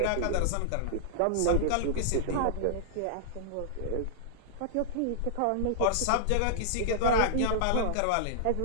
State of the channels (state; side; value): different; both; correlation -0.01